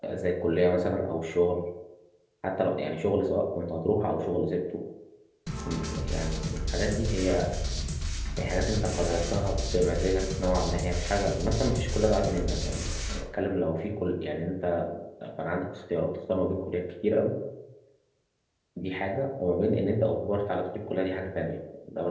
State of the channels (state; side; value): identical; both; correlation 1.00